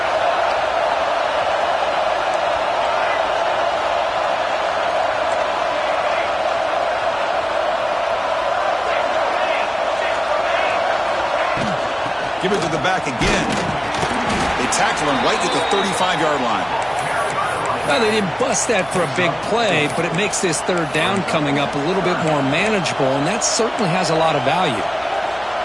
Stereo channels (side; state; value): left; noise; hum, 25 dB below the sound